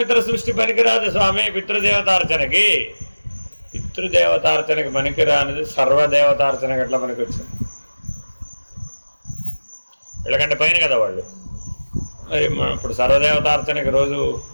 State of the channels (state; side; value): inverted; both; correlation -1.00